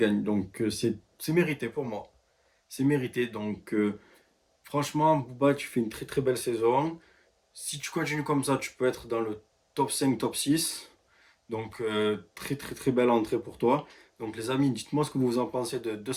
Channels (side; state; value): both; identical; correlation 1.00